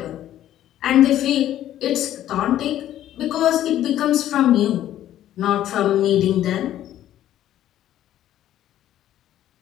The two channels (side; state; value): right; quieter; 12.3 dB